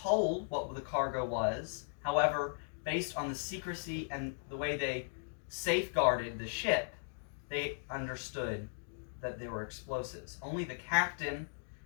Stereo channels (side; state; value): right; silent; digital silence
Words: what the cargo was. However, based on the secrecy and the way they safeguarded the ship, they understood that there were explosives. Only the captain